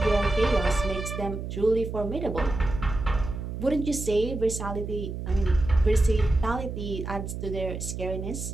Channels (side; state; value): right; noise; hum, 6 dB below the sound